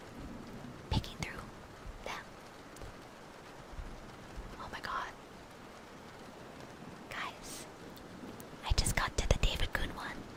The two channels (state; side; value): identical; both; correlation 1.00